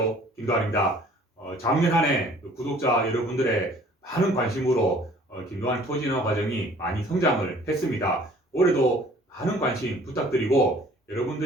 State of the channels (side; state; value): both; normal; correlation 0.54